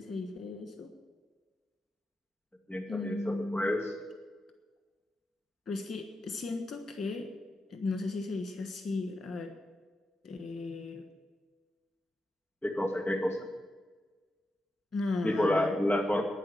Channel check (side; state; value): both; normal; correlation 0.88